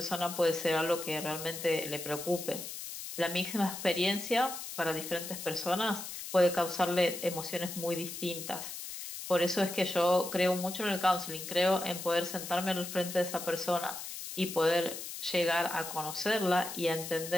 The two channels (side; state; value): left; noise; hiss, 8 dB below the sound